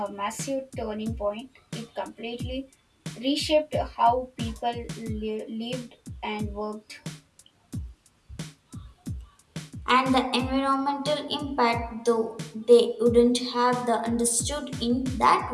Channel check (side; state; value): both; identical; correlation 1.00